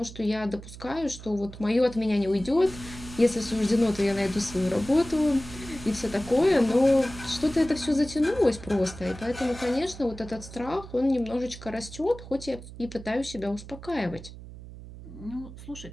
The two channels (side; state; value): right; noise; hum, 15 dB below the sound